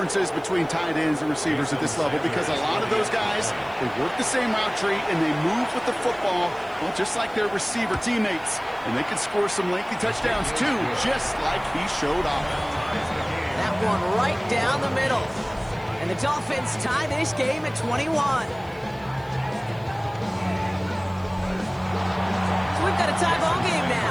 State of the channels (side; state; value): right; noise; hiss, 29 dB below the sound